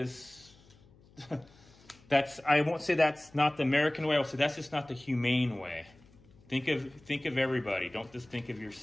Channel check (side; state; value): left; noise; hum, 27 dB below the sound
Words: I won't say that's not the American way. I'll say that's just not the humane way. Think of everybody. Don't just think of